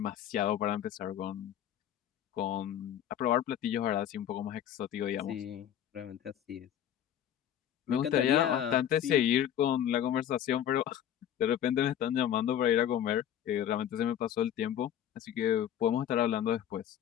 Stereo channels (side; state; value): right; quieter; 10.3 dB